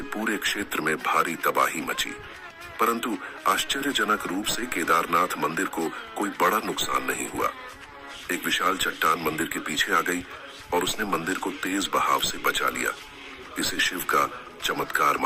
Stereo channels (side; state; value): both; identical; correlation 1.00